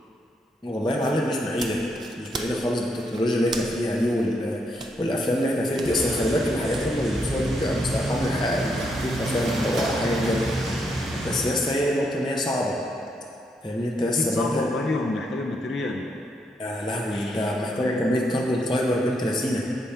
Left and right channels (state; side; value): normal; both; correlation 0.77